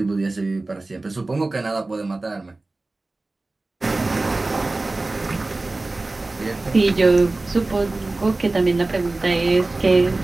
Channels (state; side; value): quieter; left; 3.1 dB